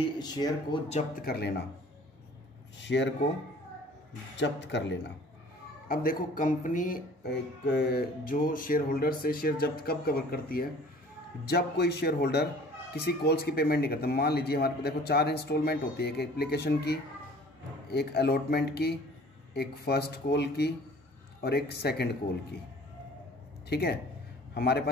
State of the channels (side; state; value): both; normal; correlation 0.49